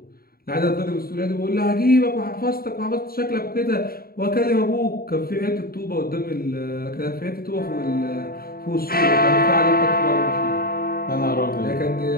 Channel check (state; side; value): late; right; 0.43 ms